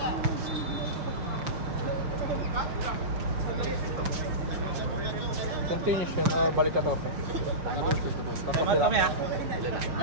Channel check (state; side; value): late; left; 6.3 ms